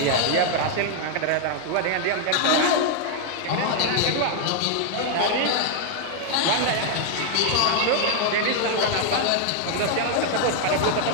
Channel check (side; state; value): both; different; correlation 0.00